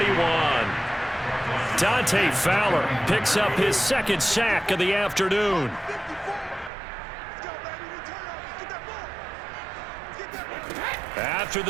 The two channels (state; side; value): drops out; left; at 6.7 s